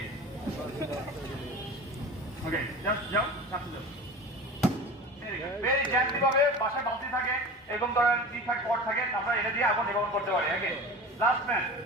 ওকে জাস্ট যাও কাছে যাও ভেরি জেন্টলি ভাবে বাসায় বালতি থাকে এরকম ধরনের ঠিকঠাক পট থাকে আমরা এটা দিয়ে আগুন নিবারণ করতে পারি ওকে লাস্ট ম্যান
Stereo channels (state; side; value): normal; both; correlation 0.34